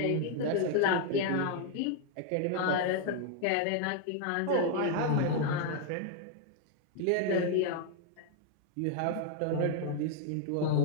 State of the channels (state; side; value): different; both; correlation 0.00